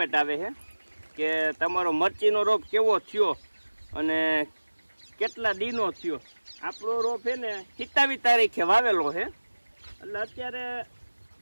આવે છે કે તમારો મરચીનો રોપ કેવો થયો અને કેટલા દીનો થયો। આપણો રોપ છે ને 27 તારીખે વાવેલો છે, એટલે અત્યારે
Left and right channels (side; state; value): both; inverted; correlation -1.00